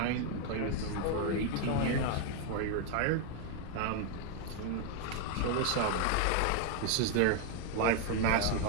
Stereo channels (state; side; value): different; both; correlation 0.01